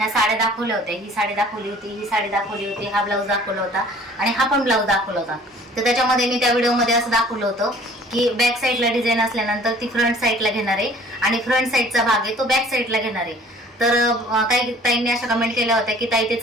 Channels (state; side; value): normal; both; correlation 0.52